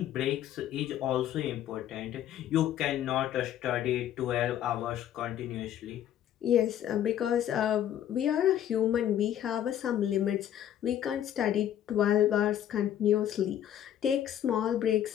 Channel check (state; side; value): quieter; right; 10.9 dB